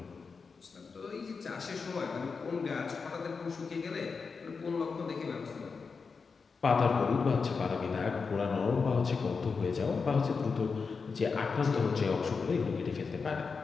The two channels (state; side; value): quieter; right; 5.0 dB